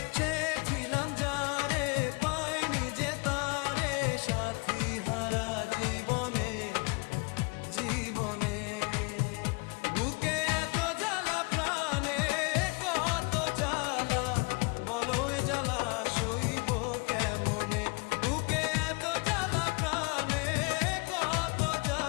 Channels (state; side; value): quieter; right; 31.1 dB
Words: চেয়েছিলাম যারে, পাইনি যে তারে, সাথী হারা জীবনে, জীবনে বুকে এত জ্বালা, প্রাণে কত জ্বালা, বলো এ জ্বালা সইব কেমনে। বুকে এত জ্বালা, প্রাণে কত